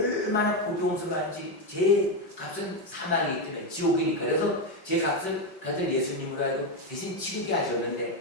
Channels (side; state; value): right; late; 5.3 ms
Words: 고통스러운지 죄의 값은 사망이기 때문에 지옥이니까. 그래서 죄 값을 그 아들 예수님으로 하여금 대신 치르게